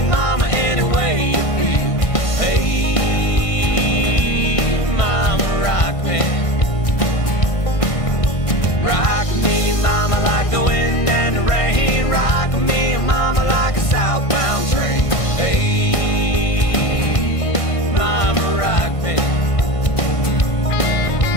mama, any way you feel. Hey, mama, rock me. Rock me, mama, like the wind and the rain. Rock me, mama, like a southbound train. Hey, mama, rock me.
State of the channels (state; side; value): late; right; 1.5 ms